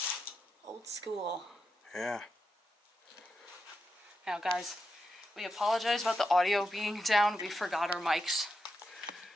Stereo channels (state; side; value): normal; both; correlation 0.87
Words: Old school. Yeah. Now, guys, we apologize about the audio being down. We forgot our mics.